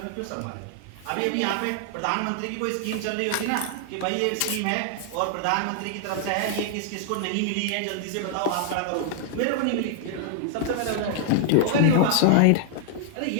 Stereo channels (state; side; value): different; both; correlation 0.00